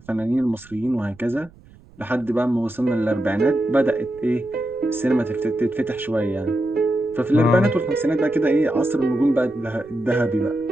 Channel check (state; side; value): noise; right; rumble, 25 dB below the sound